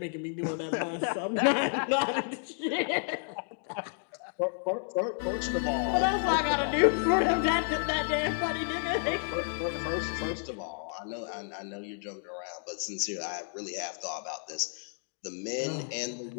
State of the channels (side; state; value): right; silent; 57 dB below the other